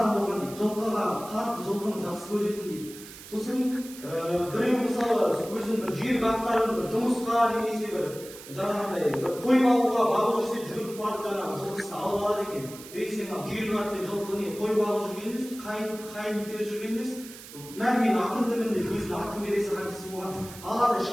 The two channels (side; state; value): right; noise; hiss, 16 dB below the sound